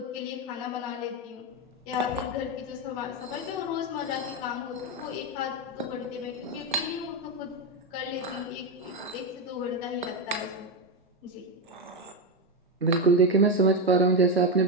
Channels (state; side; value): normal; both; correlation 0.10